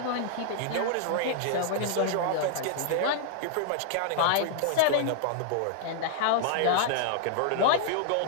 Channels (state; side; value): different; both; correlation -0.01